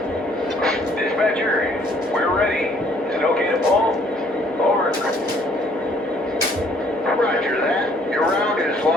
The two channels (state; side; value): normal; both; correlation 0.61